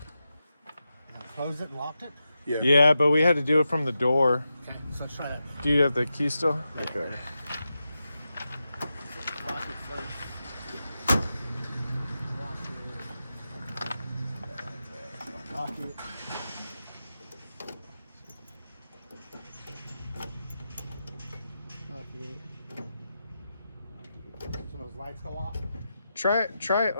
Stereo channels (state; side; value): inverted; both; correlation -0.90